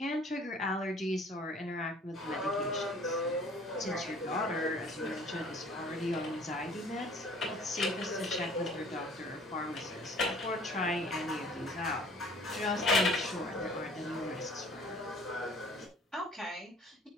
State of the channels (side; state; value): both; normal; correlation 0.52